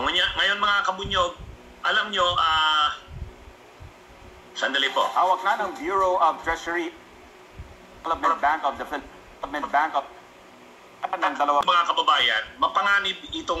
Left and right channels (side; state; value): both; identical; correlation 1.00